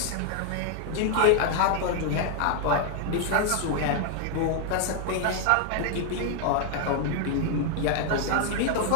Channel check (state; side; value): different; both; correlation 0.00